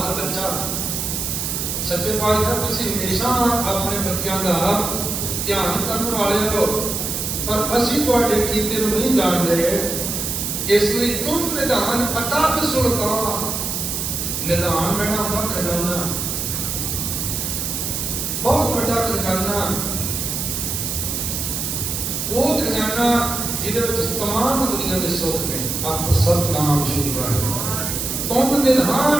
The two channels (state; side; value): noise; right; hiss, 2 dB below the sound